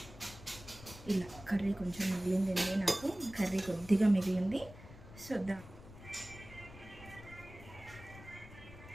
ఇలా కర్రీ కొంచెం మిగిలిందండి, నాకు కర్రీ కొద్దిగా మిగిలింది. సో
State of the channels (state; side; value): noise; left; rumble, 17 dB below the sound